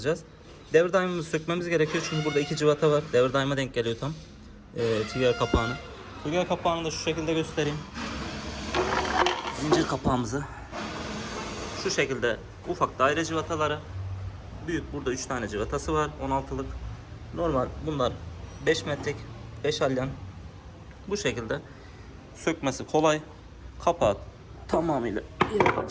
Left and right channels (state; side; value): identical; both; correlation 1.00